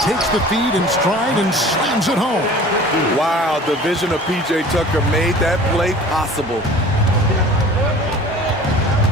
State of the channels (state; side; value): normal; both; correlation 0.44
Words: takes the feed in stride and slams it home. Wow, the vision of PJ Tucker made that play possible.